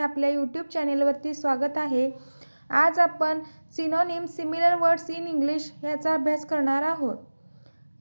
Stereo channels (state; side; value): inverted; both; correlation -1.00